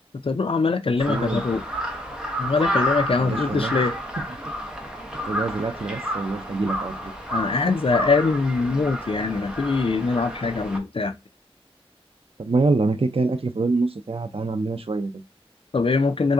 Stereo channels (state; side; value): normal; both; correlation 0.71